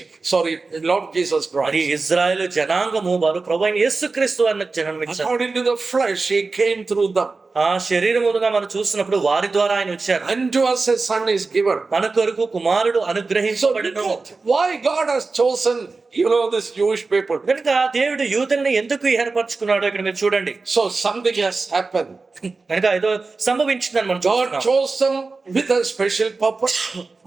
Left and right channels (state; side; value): quieter; left; 4.0 dB